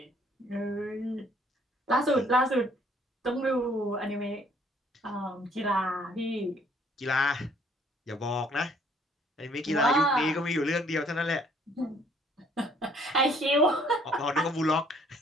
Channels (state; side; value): normal; both; correlation 0.61